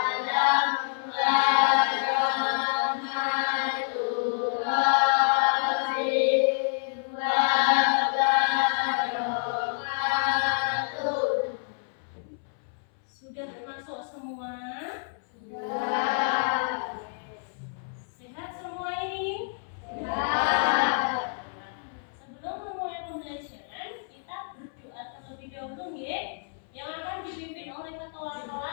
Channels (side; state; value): right; silent; 59 dB below the other